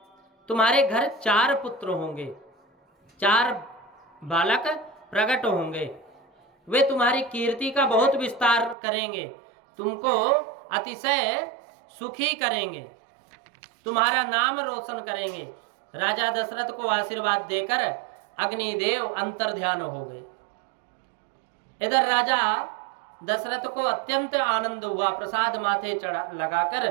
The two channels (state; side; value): drops out; left; at 8.8 s